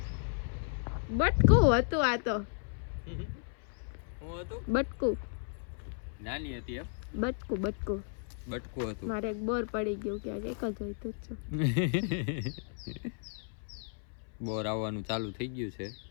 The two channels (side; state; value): right; silent; 55 dB below the other